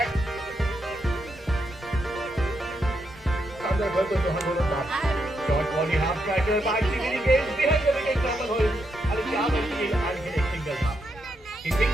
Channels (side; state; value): both; normal; correlation 0.81